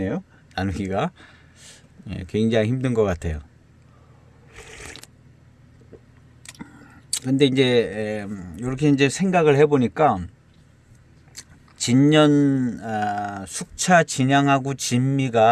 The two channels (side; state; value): both; identical; correlation 1.00